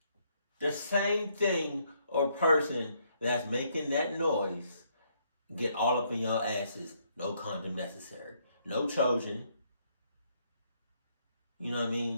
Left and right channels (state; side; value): inverted; both; correlation -0.72